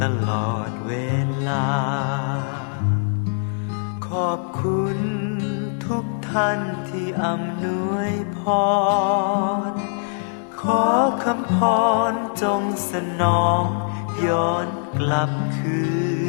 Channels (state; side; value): silent; right; 58 dB below the other